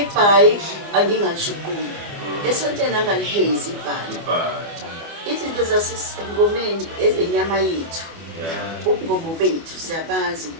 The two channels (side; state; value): left; late; 25 ms